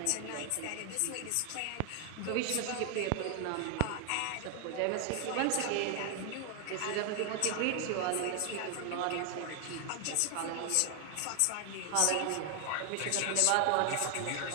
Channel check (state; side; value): different; both; correlation 0.00